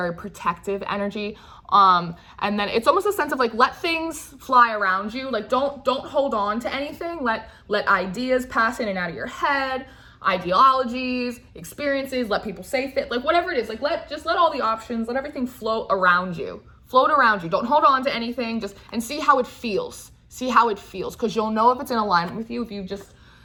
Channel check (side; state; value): both; identical; correlation 1.00